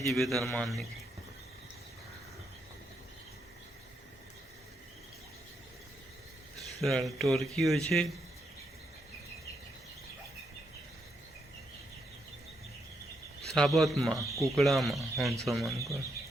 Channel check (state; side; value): normal; both; correlation 0.79